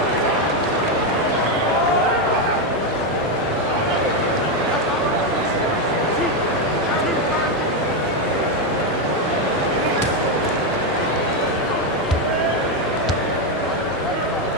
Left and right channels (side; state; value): both; normal; correlation 0.06